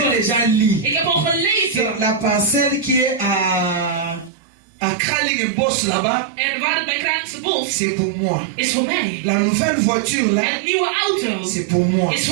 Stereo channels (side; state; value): left; drops out; at 4.3 s